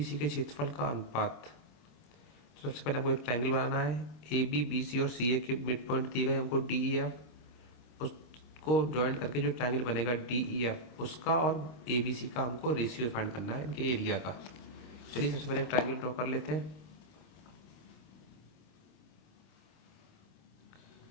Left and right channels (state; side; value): late; right; 25 ms